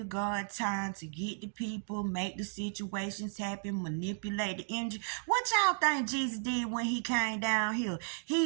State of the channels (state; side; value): silent; left; digital silence